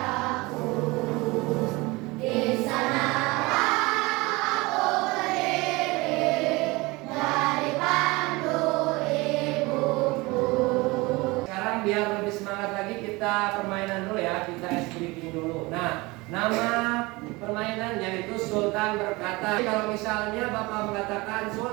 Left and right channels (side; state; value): left; quieter; 23.4 dB